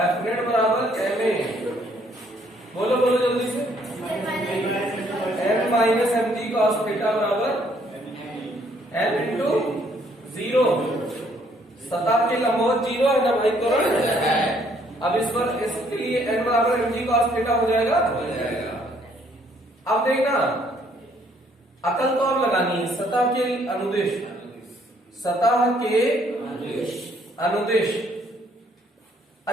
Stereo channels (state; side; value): normal; both; correlation 0.66